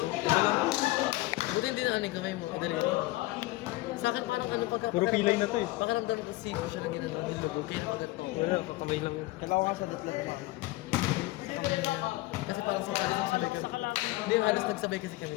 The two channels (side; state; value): right; quieter; 19.1 dB